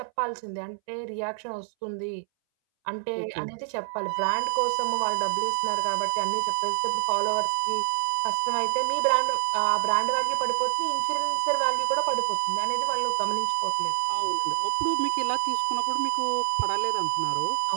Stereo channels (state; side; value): silent; left; 60 dB below the other